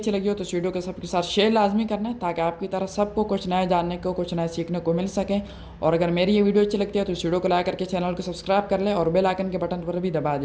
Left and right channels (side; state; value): both; identical; correlation 1.00